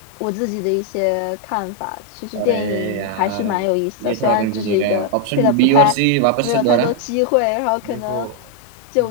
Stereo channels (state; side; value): different; both; correlation 0.00